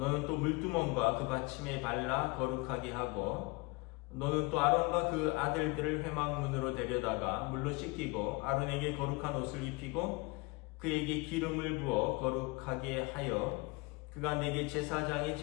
또 물두멍과 그 받침에 발라 거룩하게 하고 너는 또 아론과 그 아들들을 회막문으로 데려다가 물로 씻기고 아론에게 거룩한 옷을 입히고 그에게 기름을 부어 거룩하게 하여 그가 내게 제사장의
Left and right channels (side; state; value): right; quieter; 26.3 dB